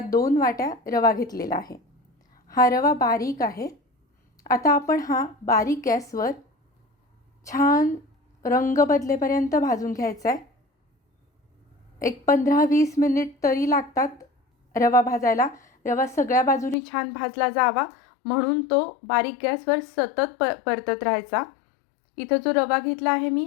2 वाट्या रवा घेतलेला आहे. हा रवा बारीक आहे. आता आपण हा बारीक गॅसवर छान रंग बदलेपर्यंत भाजून घ्यायचा आहे. एक 15-20 मिनिट तरी लागतात रवा भाजायला. रवा सगळ्या बाजूनी छान भाजला जावा म्हणून तो बारीक गॅसवर सतत परतत राहायचा. इथं जो रवा घेतला आहे मी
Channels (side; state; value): right; drops out; at 16.8 s